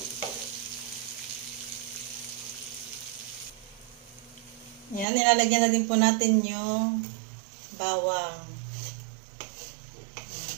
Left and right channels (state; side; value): drops out; left; at 5.1 s